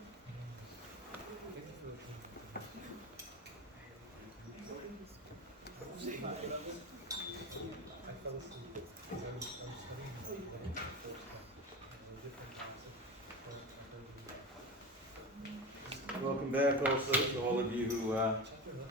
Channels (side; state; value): both; normal; correlation 0.25